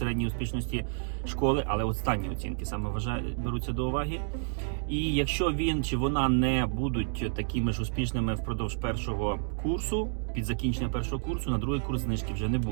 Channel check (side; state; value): left; silent; 58 dB below the other